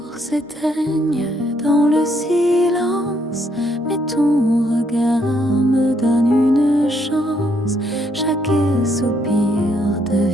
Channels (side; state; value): both; normal; correlation 0.72